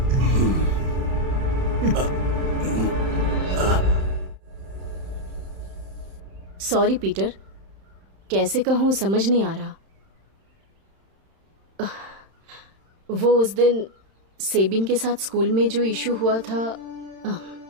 सॉरी पीटर, कैसे कहूँ समझ नहीं आ रहा। वो उस दिन सेबिन के साथ स्कूल में जो इशू हुआ था,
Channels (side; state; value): left; late; 31 ms